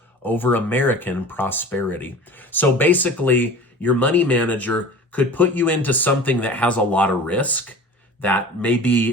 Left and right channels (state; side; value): normal; both; correlation 0.40